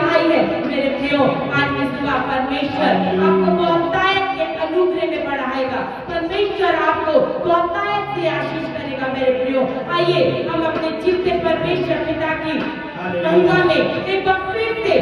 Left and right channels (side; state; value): both; identical; correlation 1.00